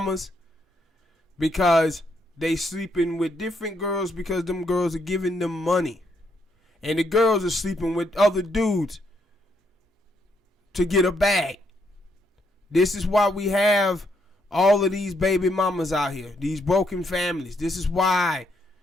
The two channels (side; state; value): both; normal; correlation 0.75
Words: because they sleeping with different girls because them girls are giving them money. And the girls are sleeping with other dudes to get a bag. This is why we have all of these baby mamas out here, these broken families. This is why